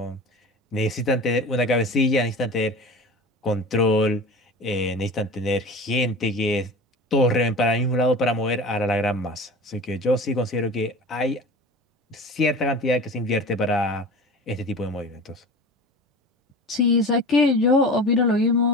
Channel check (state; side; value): normal; both; correlation 0.35